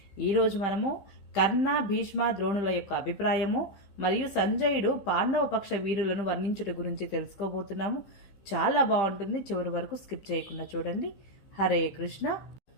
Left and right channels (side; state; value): right; late; 15 ms